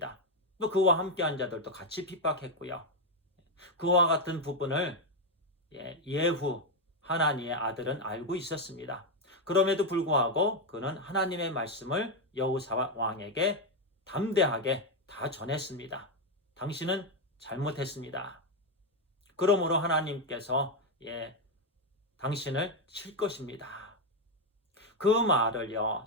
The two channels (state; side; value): normal; both; correlation 0.05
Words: 또 그와 함께한 자들도 같이 핍박했고요. 그와 같은 부분을 예후 하나니의 아들은 알고 있었습니다. 그럼에도 불구하고 그는 하나님의 말씀을 여호사밧 왕에게 담대하게 다 전했습니다. 당신은 잘못했습니다. 그러므로 하나님께서 당신을 칠 것입니다. 그 말을요,